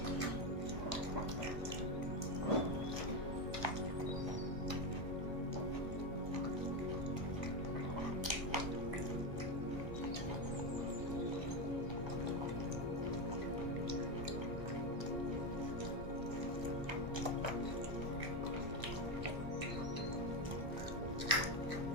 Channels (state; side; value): late; left; 1.3 ms